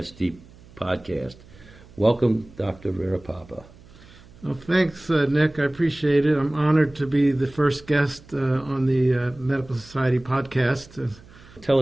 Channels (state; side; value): noise; right; hum, 23 dB below the sound